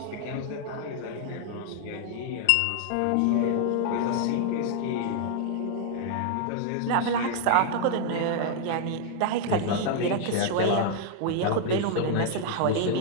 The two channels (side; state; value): both; different; correlation 0.00